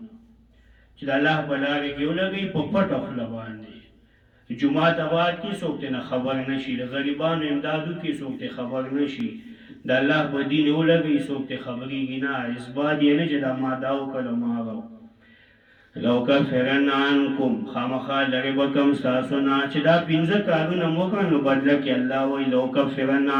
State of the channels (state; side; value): identical; both; correlation 1.00